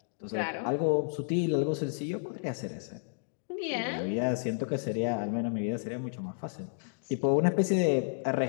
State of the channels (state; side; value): silent; right; digital silence